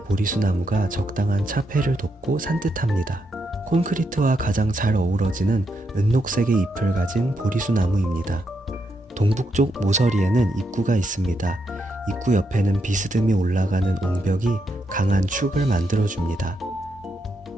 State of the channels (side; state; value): both; normal; correlation 0.81